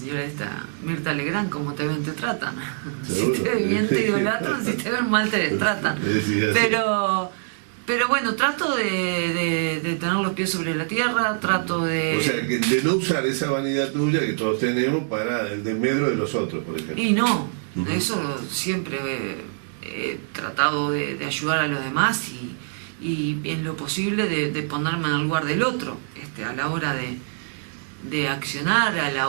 esta, Mirta Legrand, como te ven te tratan. Si te ven bien te idolatran, si te ven mal te destratan. Pero bueno, trato de tener los pies sobre la tierra, trato de... O sea, de no usar esa vanidad tuya que todos tenemos para el desmedro de los otros, por ejemplo. Y no, eso siempre he tratado de ayudar a los demás y en lo posible de ponerme en el lugar del otro, a la hora de accionar, a la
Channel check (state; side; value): silent; left; digital silence